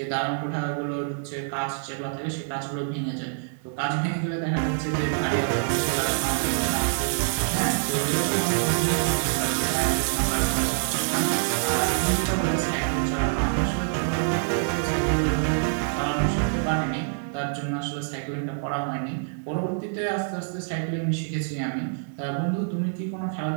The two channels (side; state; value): left; silent; digital silence